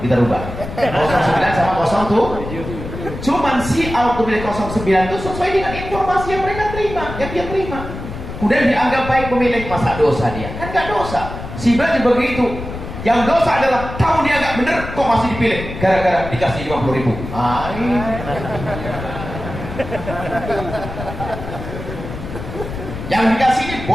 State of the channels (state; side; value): noise; left; rumble, 9 dB below the sound